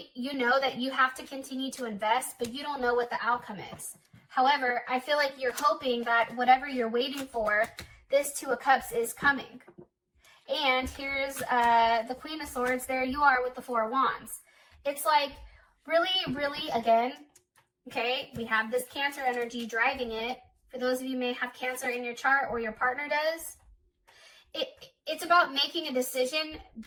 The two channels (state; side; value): identical; both; correlation 1.00